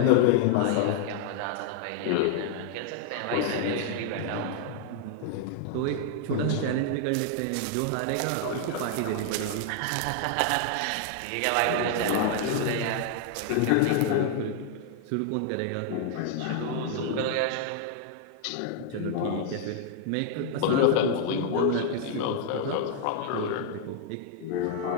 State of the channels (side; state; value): both; different; correlation 0.00